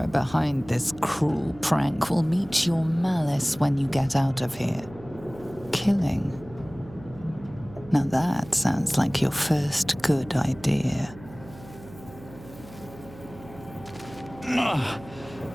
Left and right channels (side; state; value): right; noise; hum, 19 dB below the sound